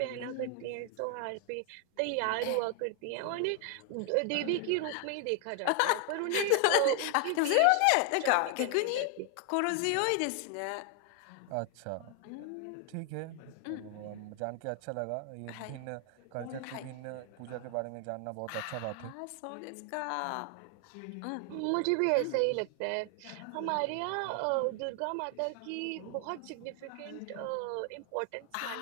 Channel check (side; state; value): both; different; correlation 0.00